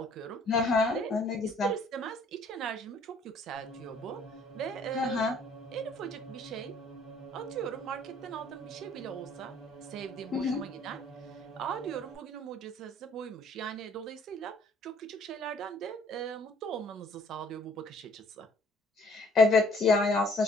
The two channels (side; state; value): both; normal; correlation 0.59